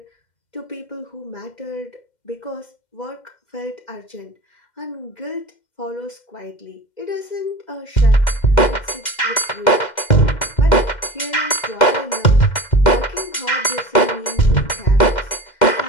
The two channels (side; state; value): right; late; 2.1 ms